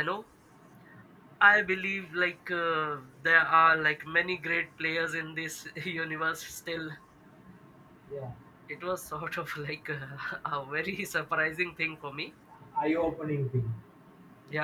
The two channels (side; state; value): both; identical; correlation 1.00